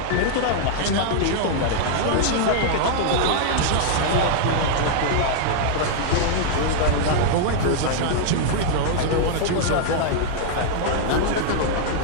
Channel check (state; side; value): different; both; correlation -0.01